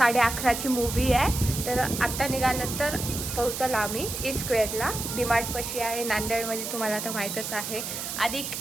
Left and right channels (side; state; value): right; noise; hiss, 5 dB below the sound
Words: मूवी आहे. तर आता निघालं तर पोहोचल आम्ही E-स्क्वेअरला. डीमार्ट पशी आहे नांदेडमध्ये, तुम्हाला तर माहीतच आहे. आणि